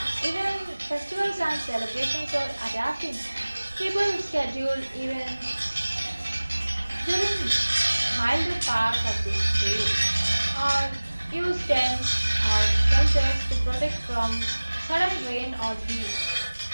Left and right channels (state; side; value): inverted; both; correlation -1.00